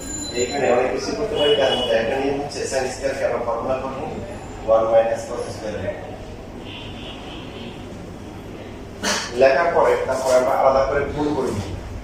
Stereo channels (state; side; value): identical; both; correlation 1.00